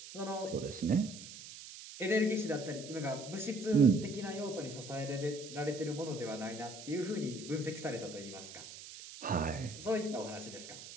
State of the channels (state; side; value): noise; right; hiss, 13 dB below the sound